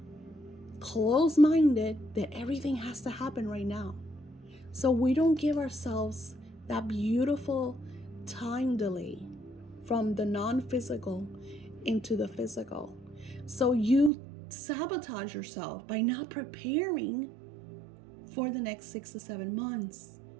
closed-minded that everything has to happen right now. So we don't give ourselves that beautiful time delay from the non-physical into the physical. So you sabotage yourself by not preparing for the next 6 to 7 months,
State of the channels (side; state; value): left; drops out; at 14.1 s